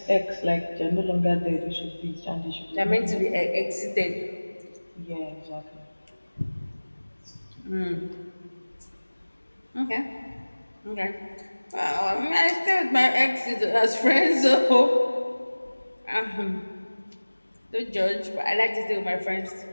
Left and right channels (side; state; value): both; inverted; correlation -1.00